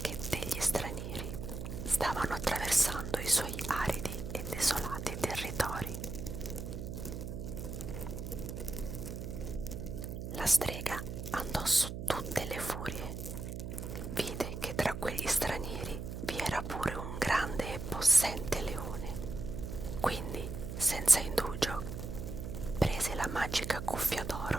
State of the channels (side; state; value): right; noise; hum, 6 dB below the sound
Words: degli stranieri stavano attraversando i suoi aridi e desolati territori. La strega andò su tutte le furie. Vide che tra quegli stranieri vi era pure un grande e possente leone. Quindi, senza indugio, prese la magica cuffia